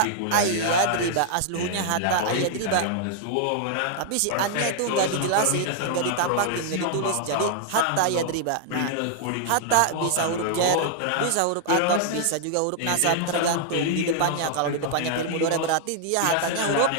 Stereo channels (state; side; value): different; both; correlation -0.01